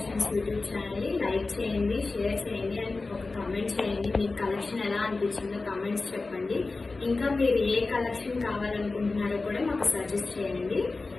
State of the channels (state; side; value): quieter; right; 3.6 dB